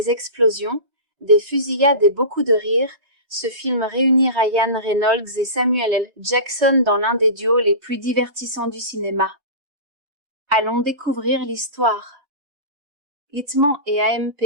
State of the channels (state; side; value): late; left; 3.2 ms